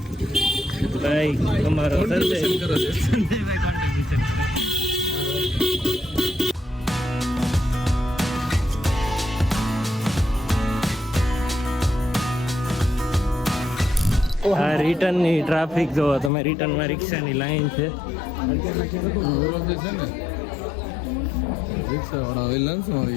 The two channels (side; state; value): right; drops out; at 16.3 s